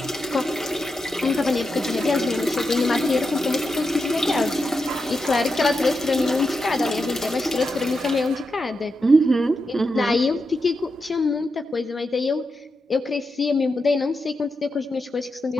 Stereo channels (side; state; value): both; normal; correlation 0.87